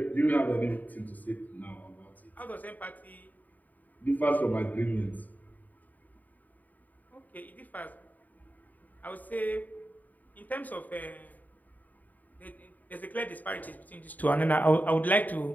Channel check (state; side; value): late; right; 0.081 ms